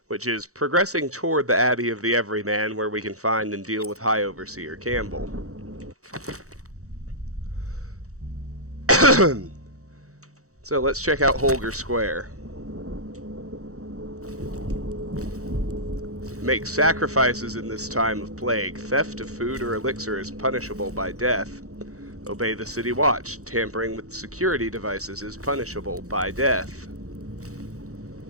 which is progressing toward the Abbey of the Everyman where we can find and deal with High Overseer Campbell. So let's check out Holger Square. Make sacrifices in this time of plague. Theft of food or elixir is punishable by death. Obey the city watch. Tampering with security devices is punishable by death.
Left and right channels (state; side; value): late; left; 0.65 ms